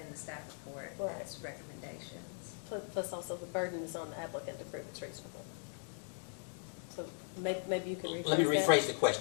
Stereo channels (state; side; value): silent; right; 52 dB below the other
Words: the staff report. Right. It's recommendations. Plus also the burden is on the applicant to prove it's reasonable. So maybe you can rephrase that. Let me rephrase the